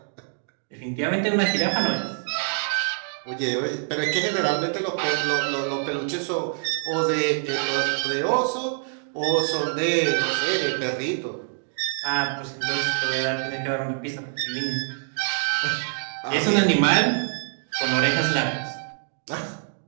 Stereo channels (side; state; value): left; silent; digital silence